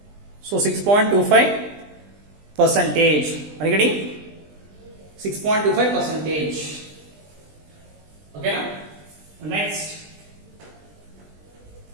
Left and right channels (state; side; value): late; left; 20 ms